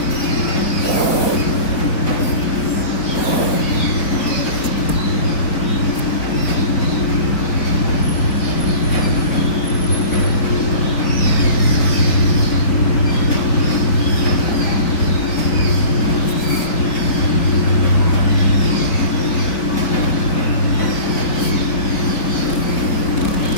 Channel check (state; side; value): late; right; 4.6 ms